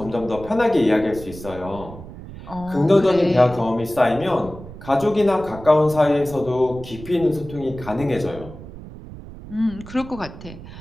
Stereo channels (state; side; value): noise; right; rumble, 14 dB below the sound